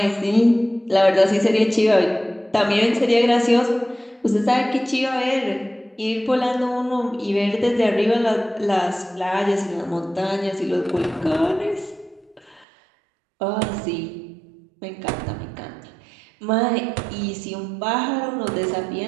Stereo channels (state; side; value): drops out; left; at 12.7 s